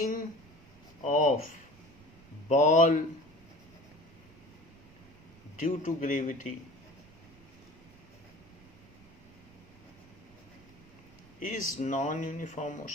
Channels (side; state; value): right; noise; rumble, 24 dB below the sound